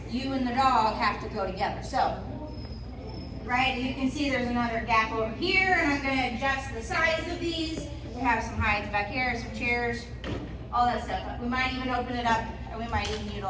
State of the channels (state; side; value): identical; both; correlation 1.00